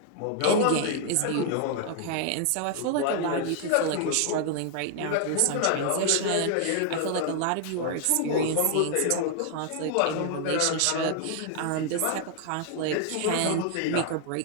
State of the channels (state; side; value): different; both; correlation 0.00